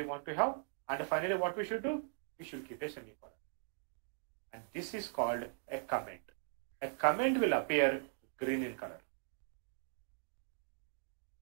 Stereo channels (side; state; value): left; silent; digital silence